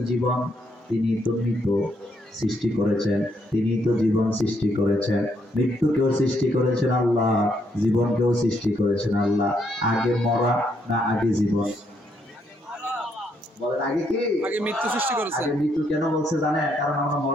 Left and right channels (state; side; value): normal; both; correlation 0.74